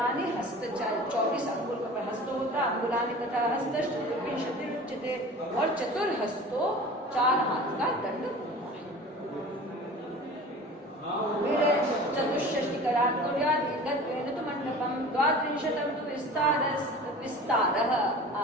हस्त, 24 अंगुल का हस्त होता है, अंगुलानि तथा हस्त चतुर्विंशति उच्यते। और चतुर्हस्तो 4 हाथ का दंड होता है। फिर चतुष्षष्टि कराकुर्यात् तो मंडपम 32 तो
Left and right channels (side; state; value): both; normal; correlation 0.39